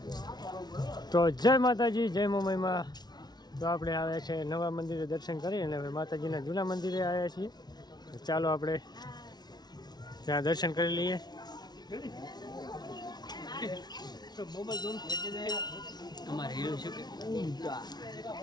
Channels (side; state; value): right; late; 0.19 ms